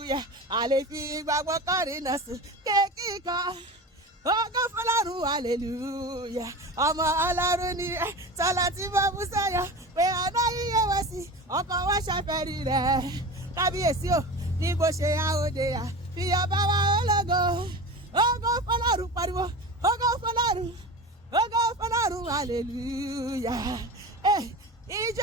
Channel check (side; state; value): both; normal; correlation 0.30